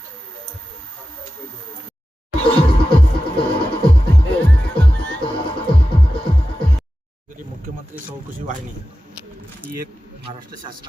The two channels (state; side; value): normal; both; correlation 0.93